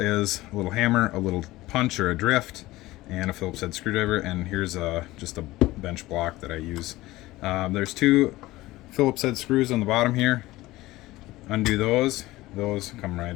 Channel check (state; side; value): quieter; right; 18.3 dB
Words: a little hammer, a little punch or a drift, and a Phillips head screwdriver, and here's just a bench block that I use. There's two Phillips head screws on the bottom here. Undo those come right